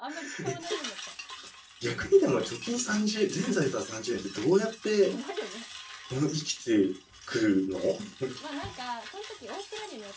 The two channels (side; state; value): both; identical; correlation 1.00